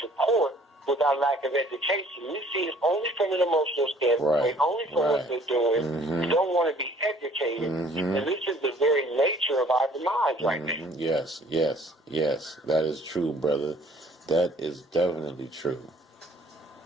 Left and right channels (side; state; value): both; normal; correlation 0.57